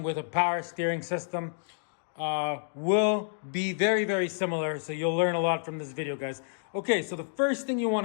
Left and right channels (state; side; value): silent; right; digital silence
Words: with a power steering system will be very similar. So you'll learn a lot from this video, guys. Okay, so the first thing you